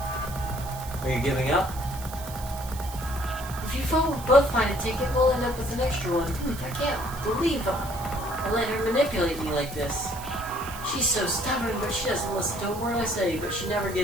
Are you giving up? If you both find a ticket, we'll end up with an extra one. I can't believe I let her manipulate me like this. She's so stubborn, but she doesn't listen to a word I say, but she never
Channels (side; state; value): right; noise; hiss, 14 dB below the sound